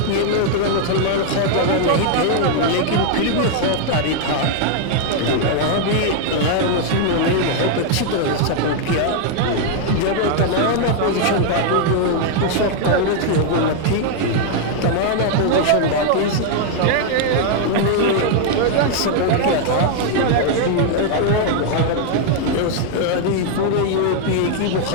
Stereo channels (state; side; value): different; both; correlation 0.00